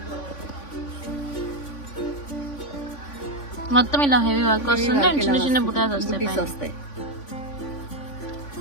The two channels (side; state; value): right; late; 3.5 ms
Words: మొత్తం ఇలా హెవీ వర్క్ వస్తుంది. చిన్న చిన్న బుటాస్ వస్తాయి.